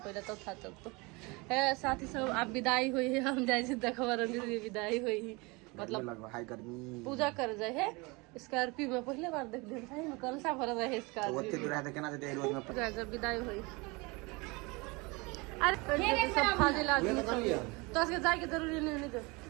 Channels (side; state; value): left; quieter; 26.4 dB